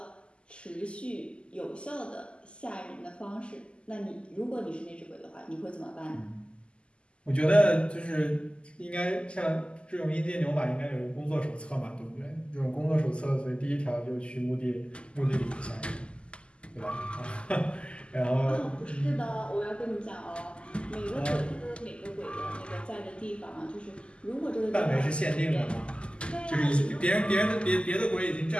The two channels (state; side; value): late; right; 0.052 ms